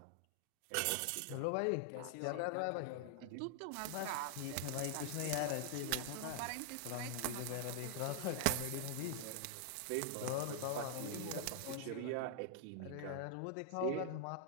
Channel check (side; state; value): both; different; correlation 0.00